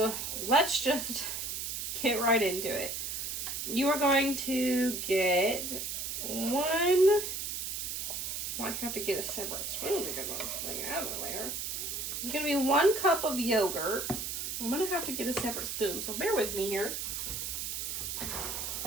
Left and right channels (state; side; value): noise; right; hiss, 4 dB below the sound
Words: let's just get right into it. You are going to get one, I have to get a separate spoon to get this thing out of there. It's going to be 1 cup of yogurt. I'm going to have to get a separate spoon, so bear with me here.